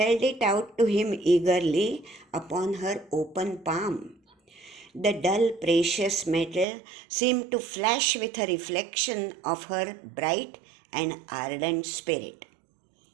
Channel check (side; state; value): left; drops out; at 6.7 s